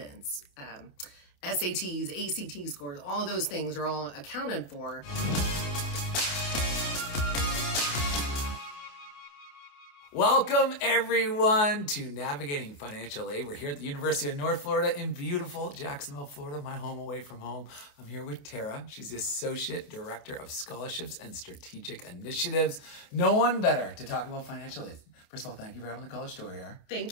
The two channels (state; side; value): late; right; 28 ms